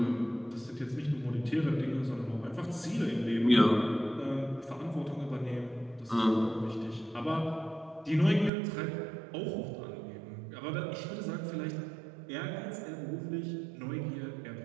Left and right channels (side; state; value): left; drops out; at 8.5 s